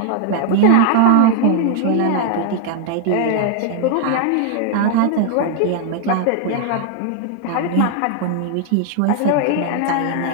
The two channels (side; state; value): both; different; correlation 0.00